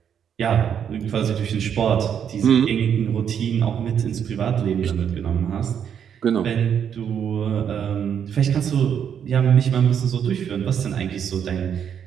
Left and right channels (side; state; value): left; quieter; 8.3 dB